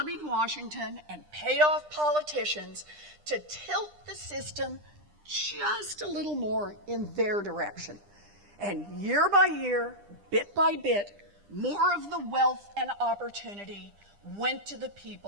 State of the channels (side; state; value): left; late; 9.9 ms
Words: Washington and paid off politicians to tilt the system just a little more in their direction. And year by year, bit by bit, more of the wealth and opportunity went to the